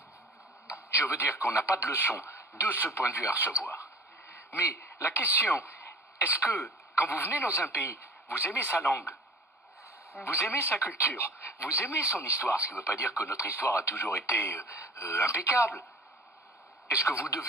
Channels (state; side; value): normal; both; correlation 0.43